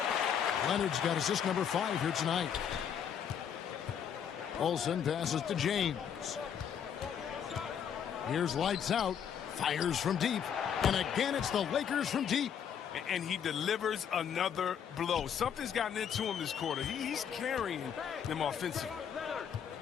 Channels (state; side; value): quieter; right; 8.2 dB